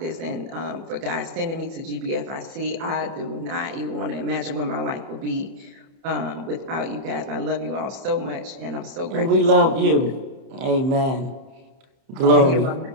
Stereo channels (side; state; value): left; late; 30 ms